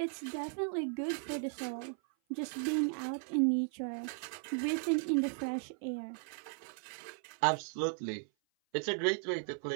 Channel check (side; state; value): left; silent; 54 dB below the other